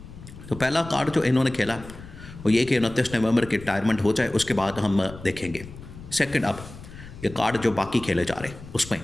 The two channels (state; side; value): noise; left; rumble, 15 dB below the sound